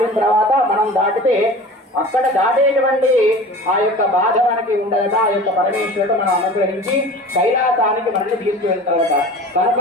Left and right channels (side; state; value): both; normal; correlation 0.38